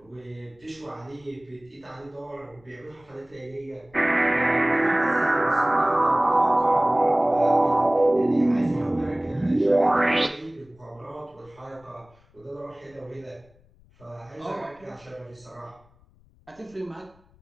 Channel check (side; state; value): left; noise; rumble, 30 dB below the sound